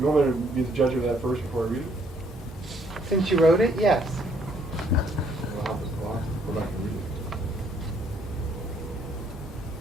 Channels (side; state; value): both; normal; correlation 0.66